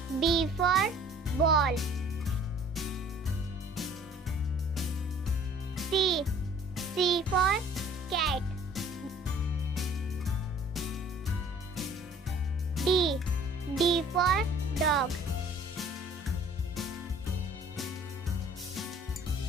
B for ball. C. C for cat. D. D for dog.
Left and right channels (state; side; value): normal; both; correlation 0.53